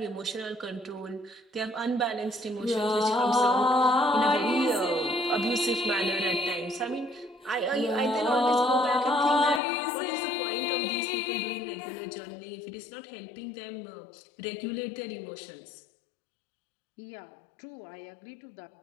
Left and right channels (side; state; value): right; drops out; at 9.6 s